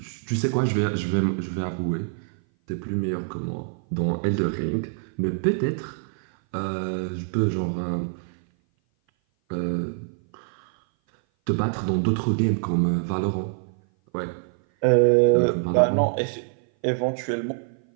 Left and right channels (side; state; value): left; silent; 57 dB below the other